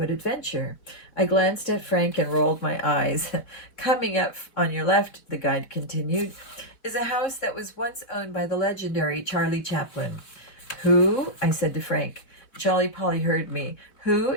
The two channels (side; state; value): right; late; 4.3 ms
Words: Adventure." I glanced at Frank and rolled my eyes. "Coming up on your left," the guide continued, "is a house that was once owned by the legendary Charlie Chaplin." "Who?" I said to Frank. Jolly Polly heard me. "Who